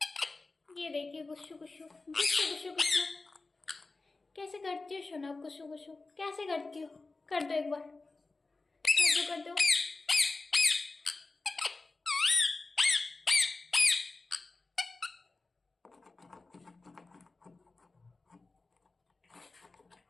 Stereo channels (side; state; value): right; quieter; 3.6 dB